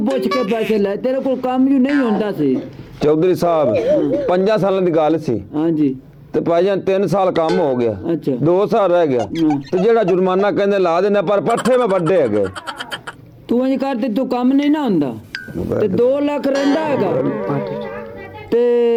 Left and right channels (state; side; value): identical; both; correlation 1.00